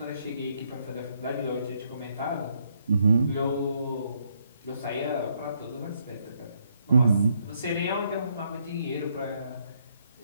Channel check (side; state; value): both; inverted; correlation -0.73